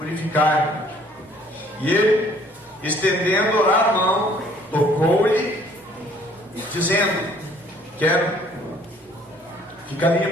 E ele, estendendo a mão, tocou-lhe, dizendo: quero, fica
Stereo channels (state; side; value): normal; both; correlation 0.59